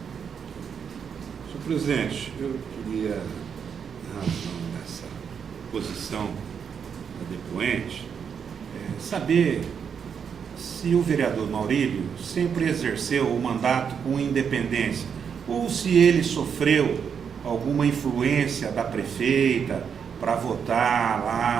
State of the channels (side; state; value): left; quieter; 7.1 dB